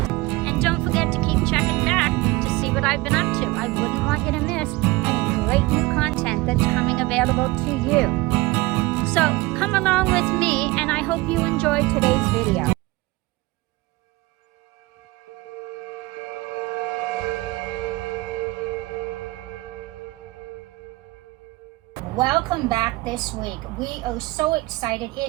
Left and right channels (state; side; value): quieter; left; 21.7 dB